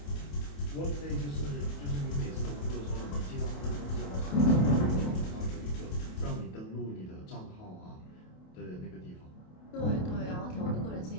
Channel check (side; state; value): right; late; 28 ms